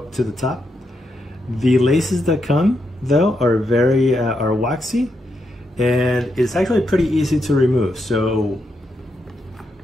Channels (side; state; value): both; normal; correlation 0.82